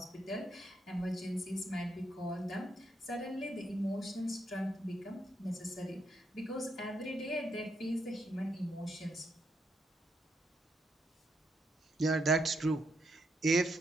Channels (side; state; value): both; normal; correlation 0.78